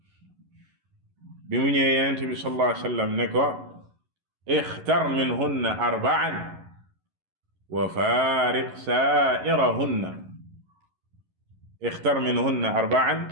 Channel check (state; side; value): late; left; 11 ms